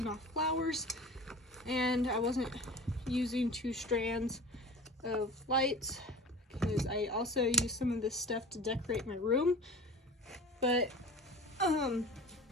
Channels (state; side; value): normal; both; correlation 0.38